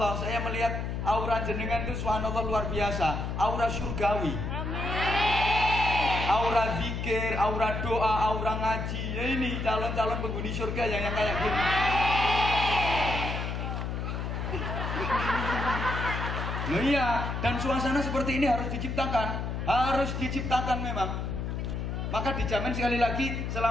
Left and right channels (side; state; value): left; noise; hum, 3 dB below the sound